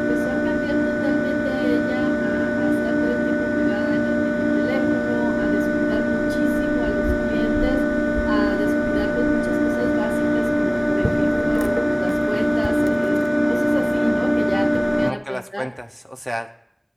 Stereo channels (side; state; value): both; identical; correlation 1.00